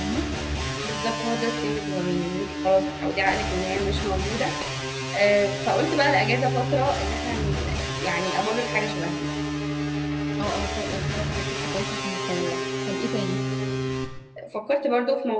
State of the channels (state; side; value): identical; both; correlation 1.00